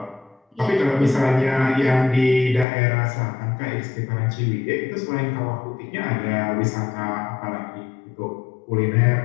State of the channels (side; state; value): right; drops out; at 2.7 s